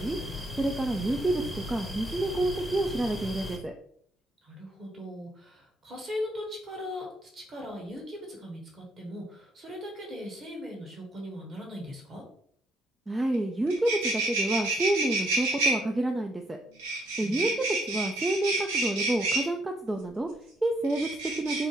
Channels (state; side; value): normal; both; correlation 0.71